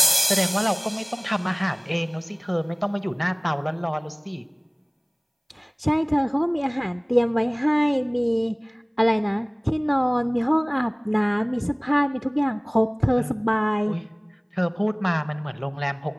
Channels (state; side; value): identical; both; correlation 1.00